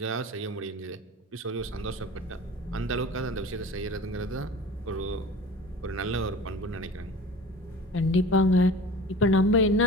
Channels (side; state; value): both; normal; correlation 0.39